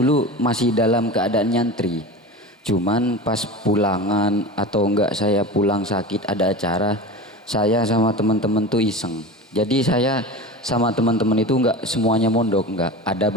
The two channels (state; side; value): normal; both; correlation 0.30